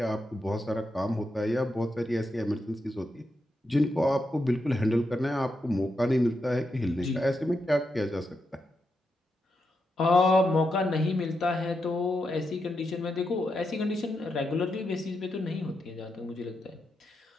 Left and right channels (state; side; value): normal; both; correlation 0.85